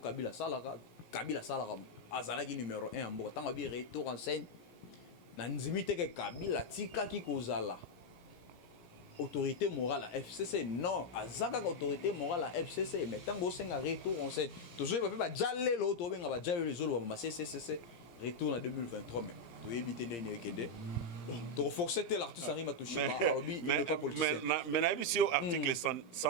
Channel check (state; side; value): late; right; 17 ms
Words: salaka azalaki numéro 1 en Boka tant bi retour en scène na nzimite ke Kabila tika ki kozala autorité morale à FCC non azaka autorité morale à FCC mais tant bo senga retour en scène toujours ba jalé lo to benga ba jalé les zolo ba CCC retour en 2023 mais tu évites ndene kende. Bon, tu renforces l'artiste Henri Matouchima, il n'est pas politicien. Mais il y a ici l'article